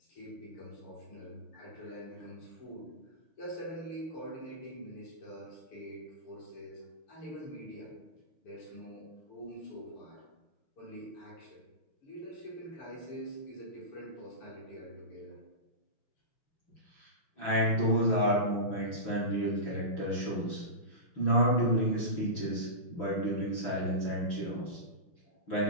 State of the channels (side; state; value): right; late; 6.1 ms